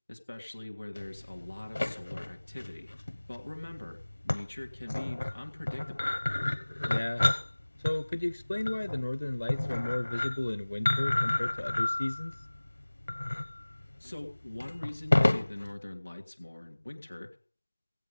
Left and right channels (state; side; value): inverted; both; correlation -1.00